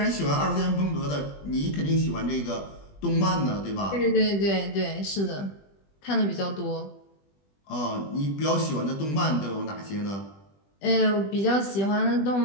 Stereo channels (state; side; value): late; right; 20 ms